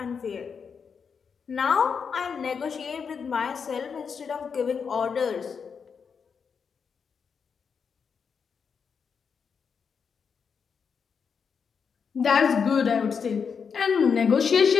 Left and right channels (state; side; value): quieter; right; 6.2 dB